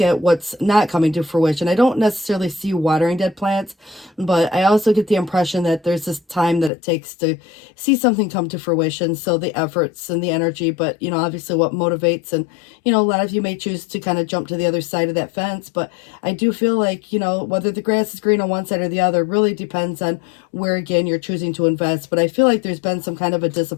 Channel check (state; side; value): drops out; right; at 6.7 s